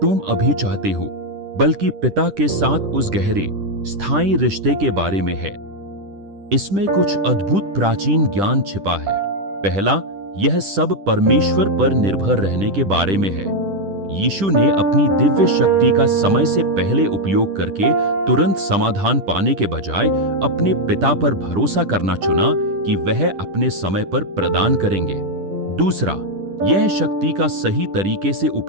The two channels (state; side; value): late; left; 10 ms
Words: अभी चाहते हो, बल्कि पिता के साथ उस गहरे, स्थायी रिश्ते के बारे में है। इसमें कुछ अद्भुत प्राचीन ज्ञान छिपा है। पहला, यह सब परमेश्वर पर निर्भर रहने के बारे में है। यीशु ने अपनी दिव्य शक्ति का समय से पहले उपयोग करके तुरंत समाधान पाने के बजाय अपने पिता पर भरोसा करना चुना कि वह अपने समय पर प्रदान करेंगे। दूसरा, यह शक्ति का सही तरीके से